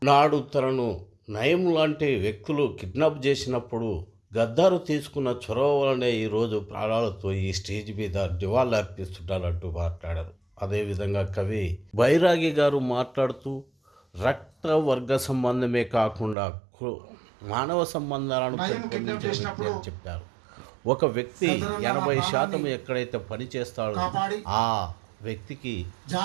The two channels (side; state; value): left; drops out; at 16.4 s